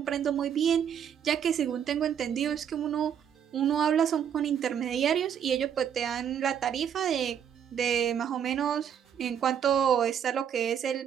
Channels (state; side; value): quieter; left; 8.6 dB